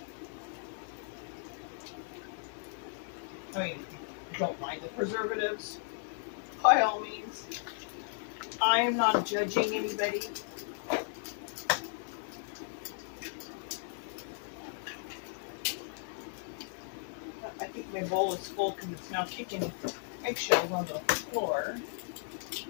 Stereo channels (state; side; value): silent; right; digital silence